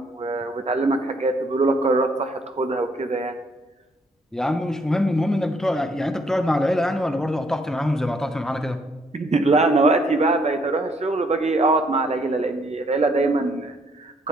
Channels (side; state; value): both; normal; correlation 0.68